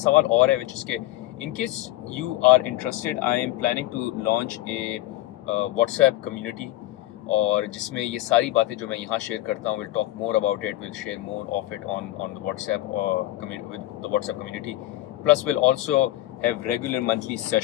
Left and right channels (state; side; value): quieter; right; 15.9 dB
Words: सवाल और है विच इज़ के in case you are interested, I am planning to launch a WhatsApp community, और जिसमें ये सारी बातें जो मैं यहाँ शेयर करता हूँ, will talk more about it, will share more of it on the WhatsApp with the WhatsApp community, plus will also have regular monthly